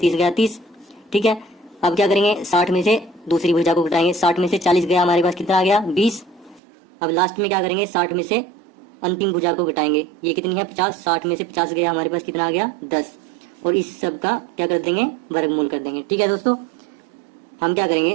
गया 30। ठीक है, अब क्या करेंगे, 60 में से दूसरी भुजा को घटाएंगे। 60 में से 40 गया, हमारे पास कितना आ गया 20। अब लास्ट में क्या करेंगे, 60 में से अंतिम भुजा को घटाएंगे, ये कितनी है 50। 60 में से 50 गया, हमारे पास कितना आ गया 10। और इस सब का क्या कर देंगे, वर्गमूल कर देंगे। ठीक है दोस्तों, हम क्या करेंगे,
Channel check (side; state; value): left; drops out; at 6.6 s